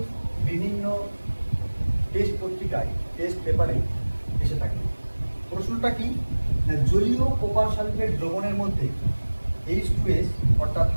বিভিন্ন টেস্ট পত্রিকায় টেস্ট পেপারে এসে থাকে। প্রশ্নটা কি, জলীয় কপার সালফেট দ্রবণের মধ্যে H2S অর্থাৎ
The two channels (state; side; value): inverted; both; correlation -1.00